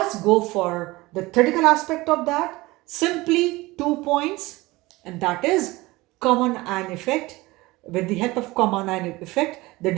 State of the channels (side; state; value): left; quieter; 20.7 dB